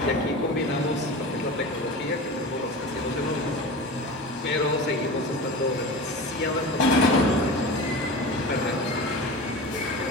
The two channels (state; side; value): normal; both; correlation 0.31